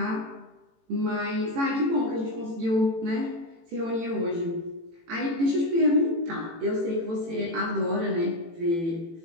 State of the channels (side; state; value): left; late; 18 ms